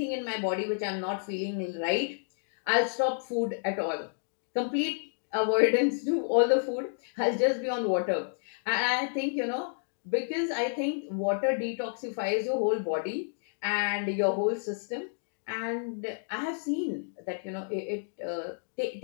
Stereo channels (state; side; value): silent; right; digital silence